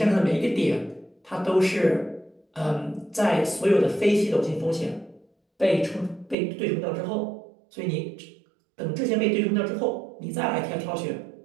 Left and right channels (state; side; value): drops out; left; at 6.4 s